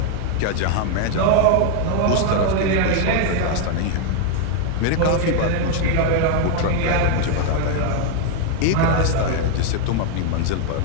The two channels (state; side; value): different; both; correlation 0.00